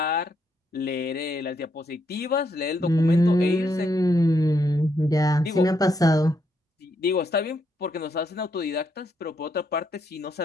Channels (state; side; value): normal; both; correlation 0.77